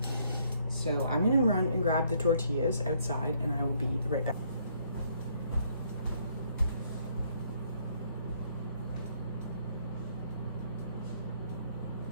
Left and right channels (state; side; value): inverted; both; correlation -0.68